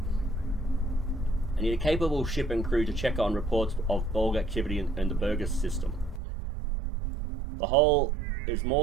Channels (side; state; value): left; drops out; at 6.2 s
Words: I need a capable ship and crew to check on reports of Borg activity in the Burgess system. The whole is